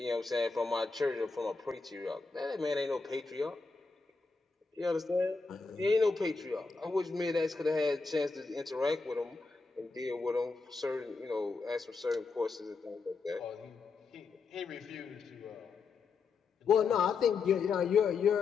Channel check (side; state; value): right; quieter; 4.5 dB